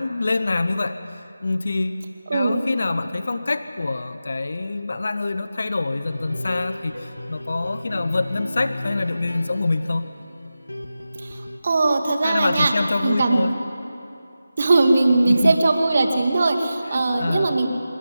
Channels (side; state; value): both; inverted; correlation -0.92